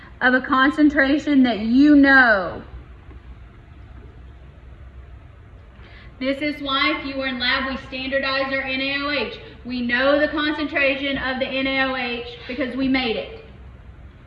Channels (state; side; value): identical; both; correlation 1.00